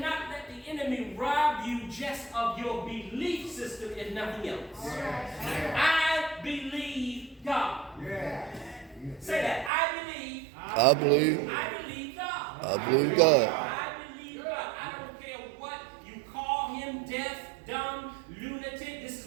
let the enemy rob you just of your belief system if nothing else. I believe God. Say that. I believe God. I believe God. I believe God. I believe God. I don't care what you call him, deaf, dumb, lunatic. This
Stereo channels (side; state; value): left; drops out; at 9.7 s